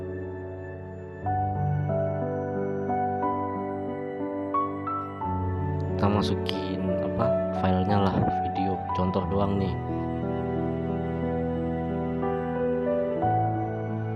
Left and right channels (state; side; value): identical; both; correlation 1.00